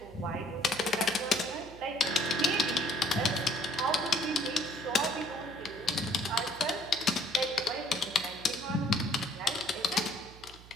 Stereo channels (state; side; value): noise; right; hum, 19 dB below the sound